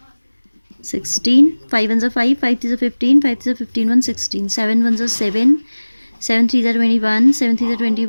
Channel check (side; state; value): both; inverted; correlation -1.00